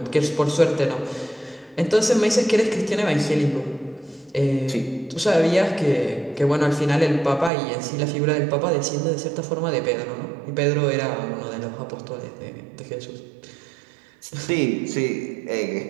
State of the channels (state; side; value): drops out; left; at 7.5 s